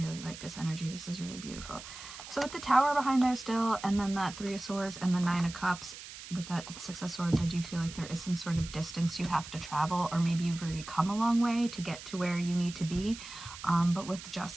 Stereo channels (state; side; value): noise; right; hiss, 13 dB below the sound